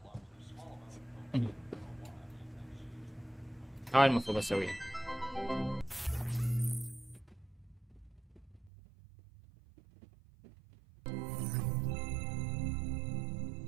هاي المفروض اسويها.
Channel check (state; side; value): drops out; left; at 8.7 s